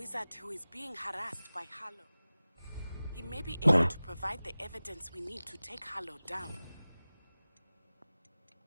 who is being harassed by Harlow. He may be able to provide the evidence we need to take Harlow down.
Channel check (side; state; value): both; inverted; correlation -0.98